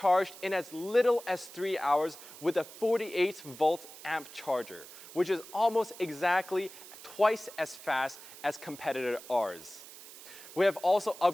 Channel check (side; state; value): right; noise; hiss, 16 dB below the sound